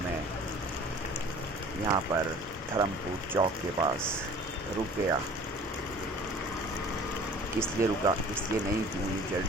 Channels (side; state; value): both; normal; correlation 0.47